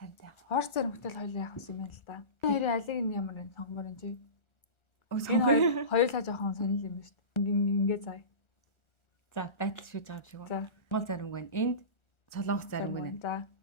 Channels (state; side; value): late; right; 1.4 ms